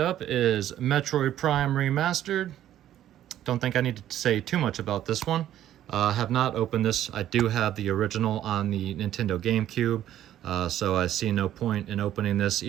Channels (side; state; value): left; quieter; 12.0 dB